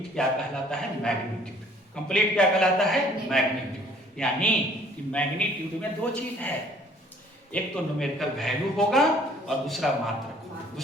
क्या कहलाता है? मैग्नीट्यूड। कंप्लीट क्या कहलाता है? मैग्नीट्यूड। यानी कि मैग्नीट्यूड में दो चीज है, एक तो न्यूमेरिकल वैल्यू होगा और दूसरा मात्रा।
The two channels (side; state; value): both; normal; correlation 0.57